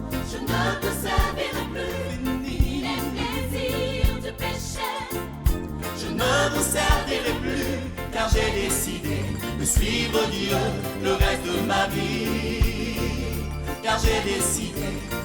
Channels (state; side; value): identical; both; correlation 1.00